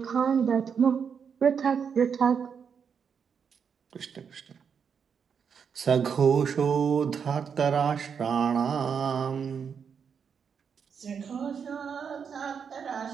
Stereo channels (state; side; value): quieter; left; 6.8 dB